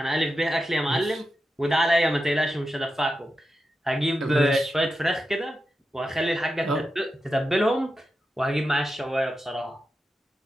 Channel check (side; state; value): both; normal; correlation 0.89